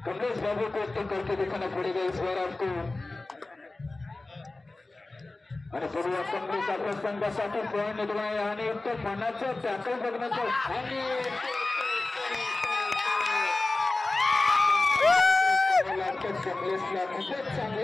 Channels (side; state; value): right; quieter; 3.1 dB